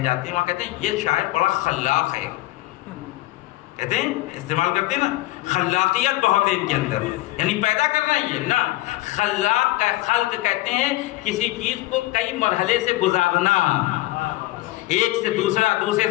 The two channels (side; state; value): right; quieter; 17.9 dB